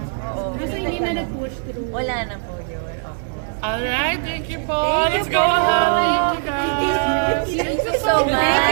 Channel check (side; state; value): left; silent; 65 dB below the other